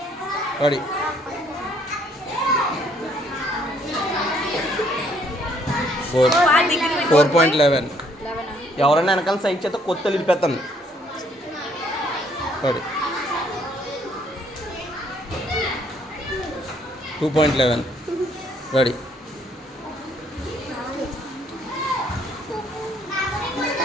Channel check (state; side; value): normal; both; correlation 0.66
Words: రెడీ 4.11. ఎవరైనా వెనకాల సైడ్ చేత కొత్త నిలిపేస్తాను. సరే 2.11 రెడీ.